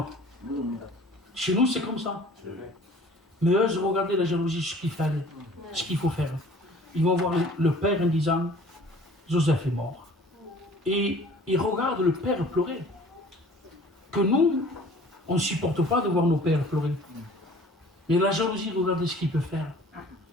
Chez nous, c'est comme ça. Mais eux, regardez la jalousie, ce qu'il fallait, ce qu'il faut faire. Ils vont voir le père en disant, Joseph est mort. Et ils regardent le père pleurer. Que nous, on ne supporte pas de voir nos pères pleurer. Mais la jalousie, regardez ce qu'il peut faire.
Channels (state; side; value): normal; both; correlation 0.49